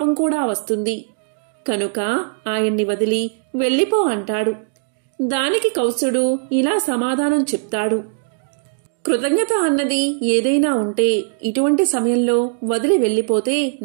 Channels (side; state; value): left; silent; digital silence